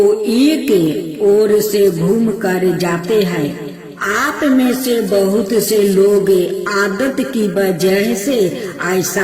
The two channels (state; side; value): identical; both; correlation 1.00